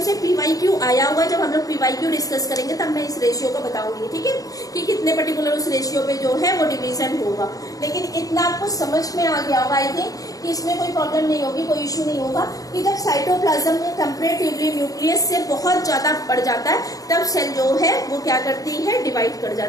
से PYQ आया हुआ है, जब हम लोग PYQ डिस्कस करेंगे तब मैं इस रेशियो को बताऊंगी। ठीक है, कि कितने पर्टिकुलर उस रेशियो पे जो है वो डिवीजन होगा। लेकिन इतना आपको समझ में आ गया होगा आई थिंक कि इसमें कोई प्रॉब्लम नहीं होगी, कोई इश्यू नहीं होगा कि जब साइटोप्लाज्म में कंपेरेटिवली न्यूक्लियस से बहुत ज्यादा बढ़ जाता है, तब सेल जो है वो क्या करती है, डिवाइड कर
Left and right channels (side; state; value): right; late; 0.17 ms